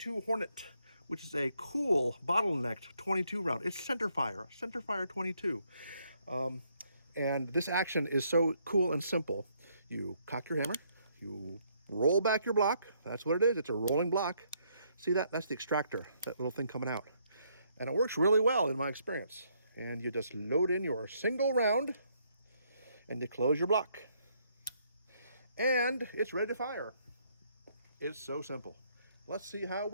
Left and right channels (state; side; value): inverted; both; correlation -0.71